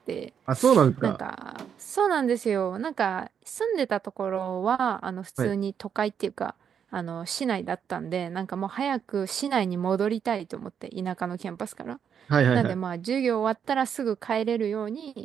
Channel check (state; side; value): quieter; left; 7.8 dB